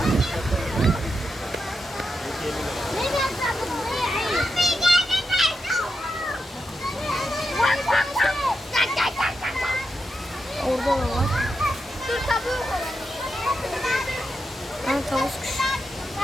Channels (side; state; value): both; normal; correlation 0.86